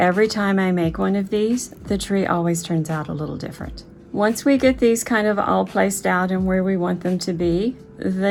time I make one of these, the tree always turns out a little different. Once we get these kind of all placed out and where we want them to be, the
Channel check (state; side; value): identical; both; correlation 1.00